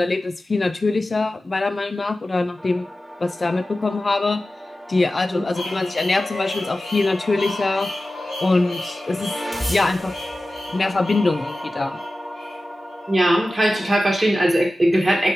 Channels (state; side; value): normal; both; correlation 0.95